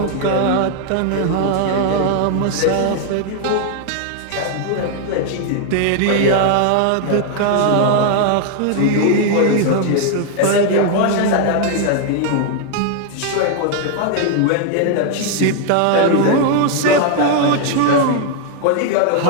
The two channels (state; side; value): different; both; correlation 0.00